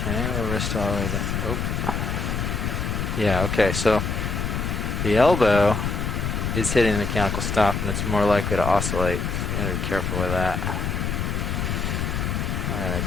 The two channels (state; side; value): noise; left; rumble, 1 dB below the sound